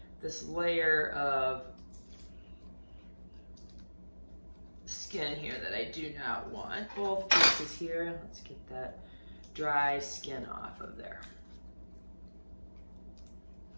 this layer of skin here that I do not want. Both pieces here. Let's get that dry skin off of there.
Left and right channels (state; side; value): inverted; both; correlation -1.00